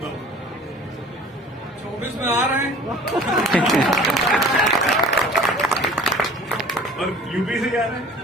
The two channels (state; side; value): normal; both; correlation 0.46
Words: बाबू 24 में आ रहे हैं। और यूपी से जा रहे हैं।